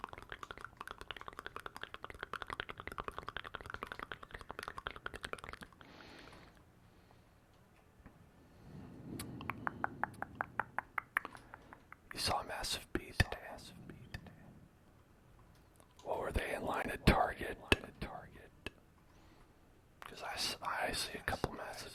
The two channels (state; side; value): identical; both; correlation 1.00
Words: You saw a massive bee today. What were they in line at Target? Because I see a couple